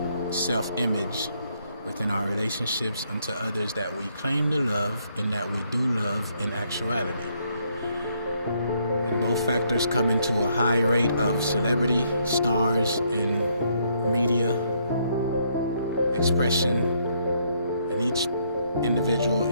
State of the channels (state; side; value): inverted; both; correlation -0.71